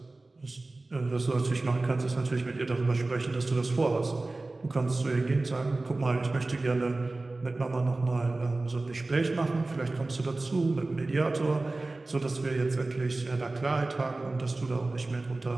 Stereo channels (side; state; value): left; quieter; 3.1 dB